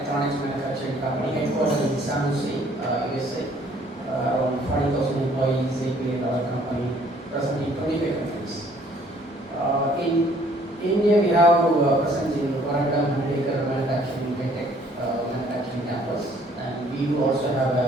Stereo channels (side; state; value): both; normal; correlation 0.60